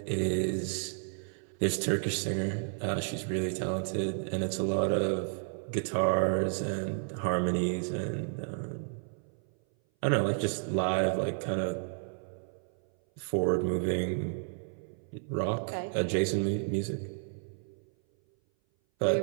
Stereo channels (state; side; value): silent; left; 57 dB below the other